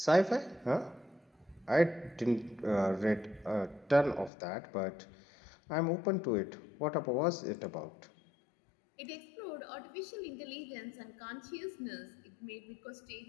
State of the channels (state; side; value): drops out; right; at 4.3 s